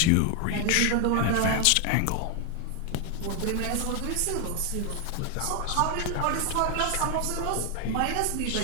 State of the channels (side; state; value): both; different; correlation 0.01